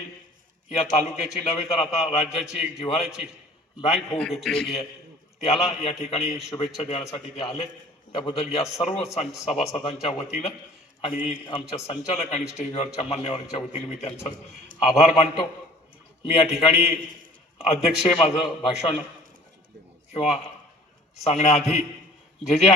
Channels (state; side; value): normal; both; correlation 0.50